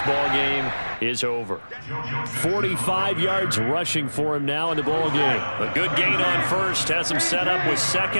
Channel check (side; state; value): both; inverted; correlation -1.00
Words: ball game is over. 45 yards rushing for him now in the ball game. A good gain on 1st, has him set up with